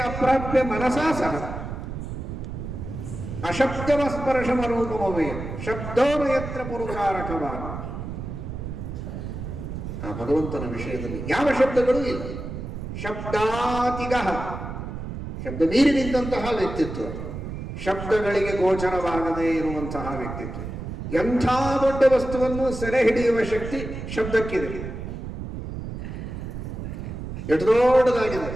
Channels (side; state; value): right; noise; rumble, 7 dB below the sound